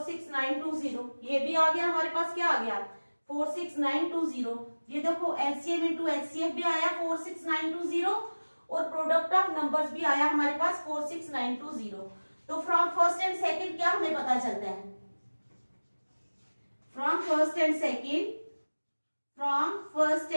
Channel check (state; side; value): inverted; both; correlation -1.00